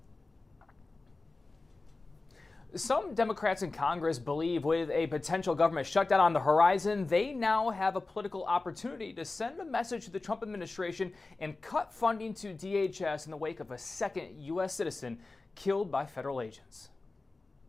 Some Democrats in Congress believe with a potential government shutdown on the horizon, they now have a political opportunity to send a message to the Trump administration and cut funding to DHS in the wake of a second U.S. citizen killed by federal agents.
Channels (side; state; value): right; quieter; 3.5 dB